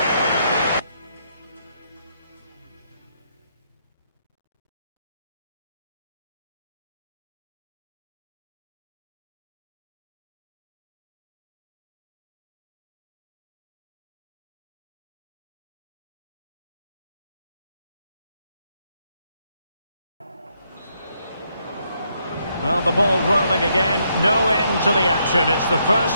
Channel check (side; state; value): both; inverted; correlation -0.76